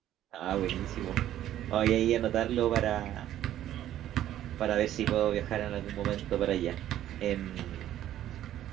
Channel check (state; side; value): quieter; left; 12.3 dB